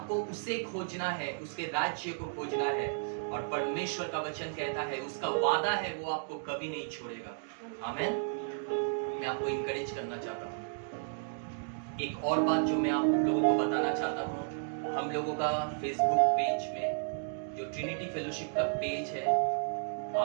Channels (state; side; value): silent; left; digital silence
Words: उसे खोजना है, उसके राज्य को खोजना है। और परमेश्वर का वचन कहता है, उसका वादा है, वो आपको कभी नहीं छोड़ेगा। आमीन। मैं आपको इंकरेज करना चाहता हूँ। एक और बात जो मैं आप लोगों को बताना चाहता हूँ, हम लोगों का फेसबुक पेज में जो ट्रिनिटी फेलोशिप का पेज है,